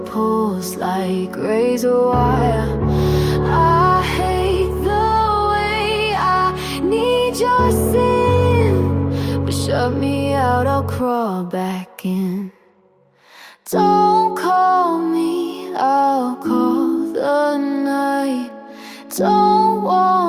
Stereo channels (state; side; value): identical; both; correlation 1.00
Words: like razor wire. I hate the way I need your sin, but shut me out, I'll crawl back in. Don't call me, I'll call the night. Don't